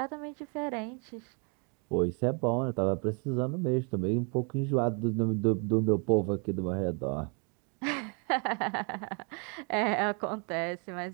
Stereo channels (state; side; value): quieter; left; 36.5 dB